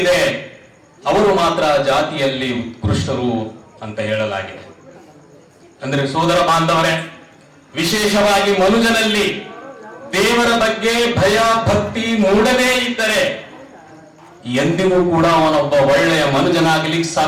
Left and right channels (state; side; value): identical; both; correlation 1.00